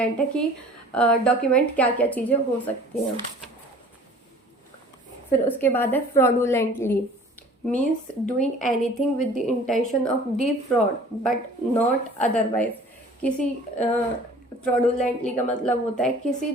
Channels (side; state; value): both; normal; correlation 0.48